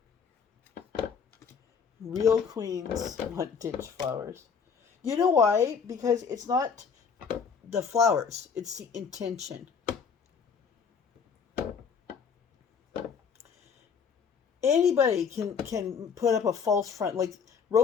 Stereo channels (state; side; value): quieter; right; 6.2 dB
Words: Real queens want ditch flowers. You know why? Because it's not the flowers, it's the intention. Anybody can put up a false front. Like,